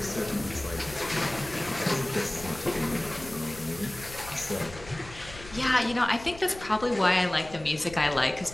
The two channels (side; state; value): left; noise; rumble, 17 dB below the sound